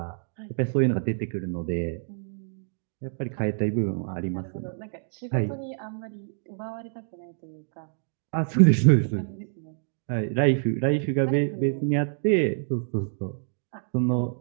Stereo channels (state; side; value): silent; left; digital silence